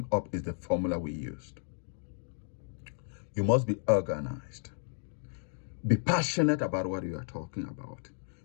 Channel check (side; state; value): right; silent; digital silence